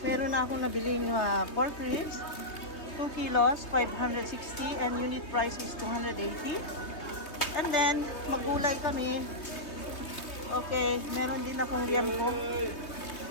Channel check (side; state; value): right; late; 3.2 ms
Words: Meron na akong nabiling pork ribs. 2 kilos, 560 and unit price is 280. And then, magulay kami. Okay, meron din akong liempo.